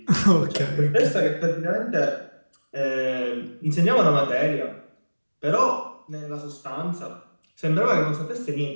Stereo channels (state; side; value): inverted; both; correlation -1.00